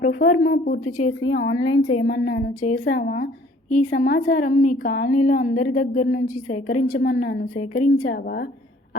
ప్రొఫార్మా పూర్తి చేసి ఆన్లైన్ చేయమన్నాను, చేశావా? ఈ సమాచారం మీ కాలనీలో అందరి దగ్గర నుంచి సేకరించమన్నాను, సేకరించావా?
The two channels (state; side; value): normal; both; correlation 0.56